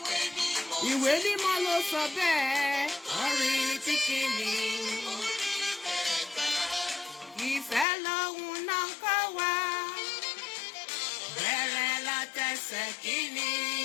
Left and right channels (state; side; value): drops out; right; at 7.9 s